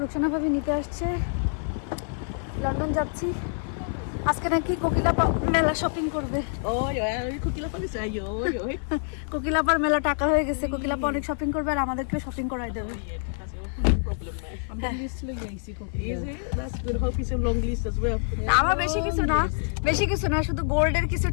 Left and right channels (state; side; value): silent; right; 56 dB below the other